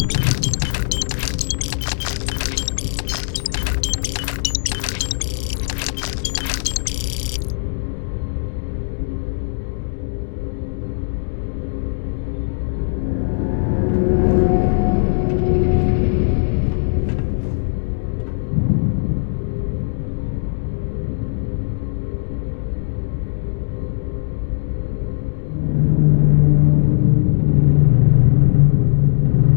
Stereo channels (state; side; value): silent; right; digital silence